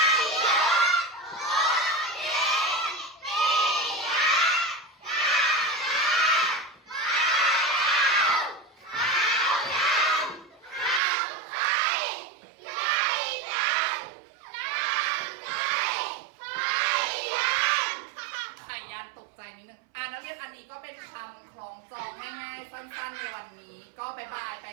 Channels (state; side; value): drops out; left; at 11.0 s